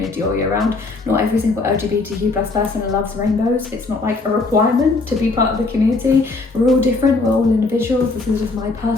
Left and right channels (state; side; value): quieter; right; 3.6 dB